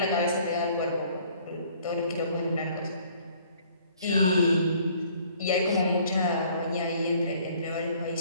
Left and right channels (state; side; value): inverted; both; correlation -0.58